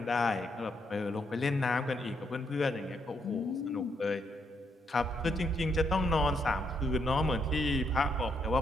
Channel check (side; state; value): both; normal; correlation 0.76